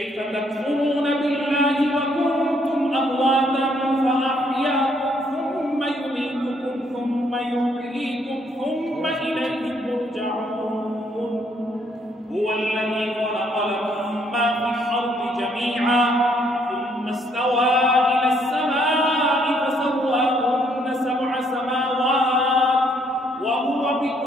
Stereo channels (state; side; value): normal; both; correlation 0.69